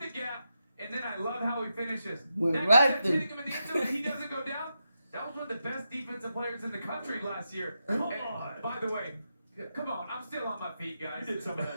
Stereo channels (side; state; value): both; inverted; correlation -0.87